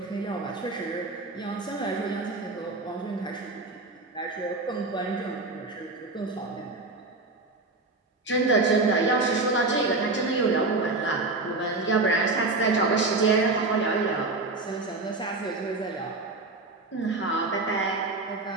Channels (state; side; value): quieter; left; 3.4 dB